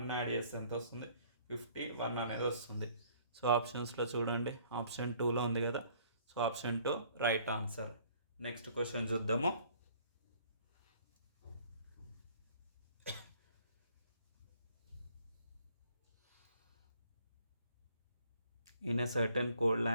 యాడ్ చేస్తే ఎంత వస్తుంది? 51 అనేది వస్తుంది. సో ఆప్షన్స్లో చూడండి, ఆప్షన్ 2లో ఉంది కదా. So option 2 right answer. Next question చూద్దాము. In a certain code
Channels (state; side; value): inverted; both; correlation -0.59